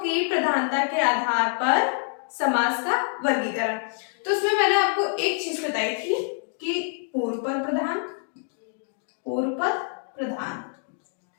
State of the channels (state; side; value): silent; right; 59 dB below the other